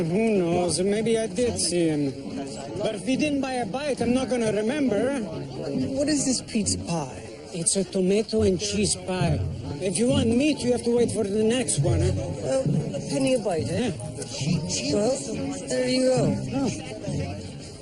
Who knows? Maybe I did see him. But if he didn't buy a bite, I'm not gonna remember. What is this pizza pie? It's a tomato and cheese pie. If you want meat, you have to wait for the next one, huh? A penny a bite, eh? Well, there you go. Oh.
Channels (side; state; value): both; identical; correlation 1.00